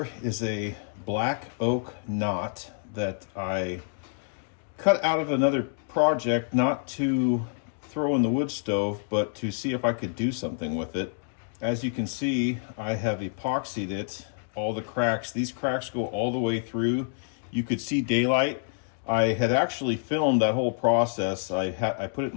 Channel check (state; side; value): silent; right; digital silence